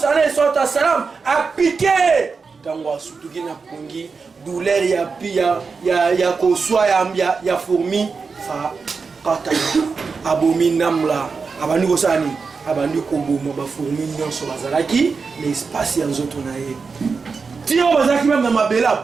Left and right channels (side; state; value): left; quieter; 4.9 dB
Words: alayhi salatu wassalam apike tango asutuki na pungi douleur ya pia ya koswa ya fourmi fa kata abomi namla abandi ko sani abandi ko bomo ba fourmi nyonso bazalaki na espace ya nzoto na ye tio bazalaki même na mabela